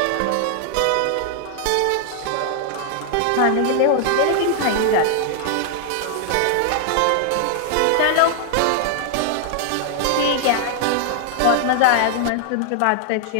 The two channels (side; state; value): both; different; correlation 0.00